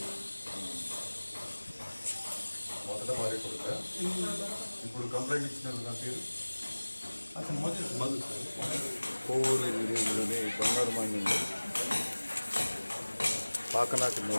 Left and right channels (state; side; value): inverted; both; correlation -1.00